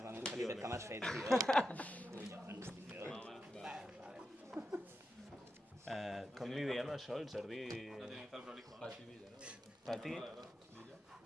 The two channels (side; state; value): both; normal; correlation 0.88